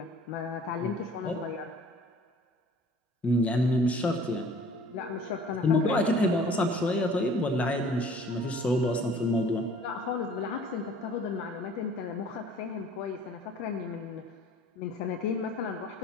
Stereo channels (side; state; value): both; normal; correlation 0.51